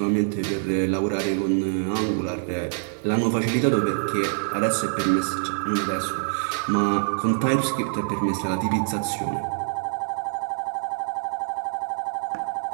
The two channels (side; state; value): left; silent; 62 dB below the other